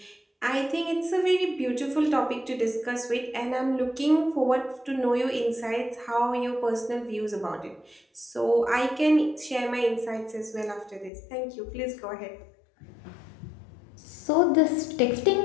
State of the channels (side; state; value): right; drops out; at 11.1 s